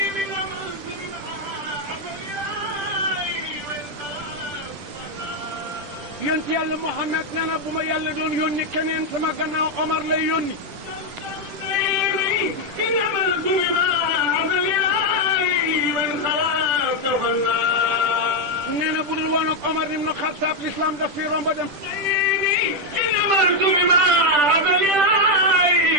yonent yàlla Muhammad nee na bu ma yàlla doon yónni keneen sama gannaaw Omar lay yónni. nee na bu dul woon ak Omar ibn Khattab l'islam daf fi romb dem.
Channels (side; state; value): left; late; 10 ms